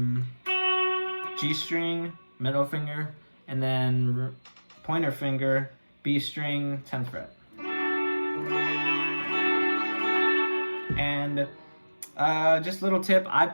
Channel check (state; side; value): inverted; both; correlation -1.00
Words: G string, middle finger, and then pointer finger, B string, 10th fret. And just a little tip, I